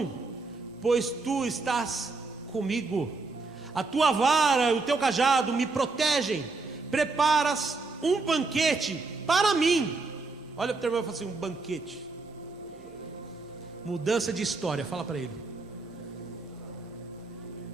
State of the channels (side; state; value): left; quieter; 3.8 dB